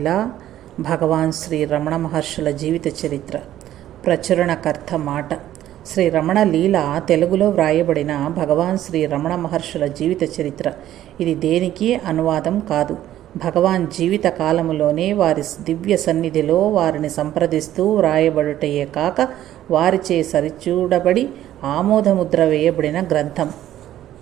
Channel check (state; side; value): quieter; left; 12.7 dB